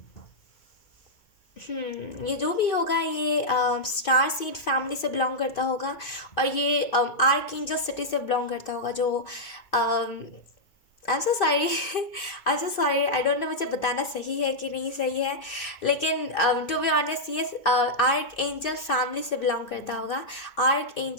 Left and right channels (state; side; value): late; right; 2.2 ms